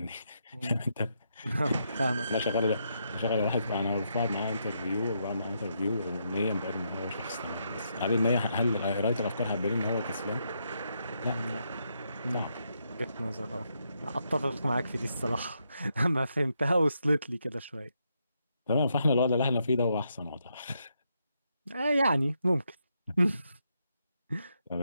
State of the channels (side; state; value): both; inverted; correlation -0.79